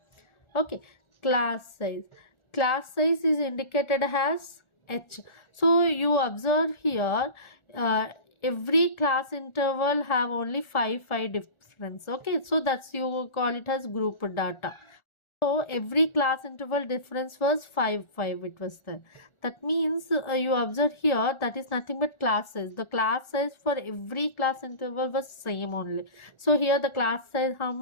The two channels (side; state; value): right; late; 1.4 ms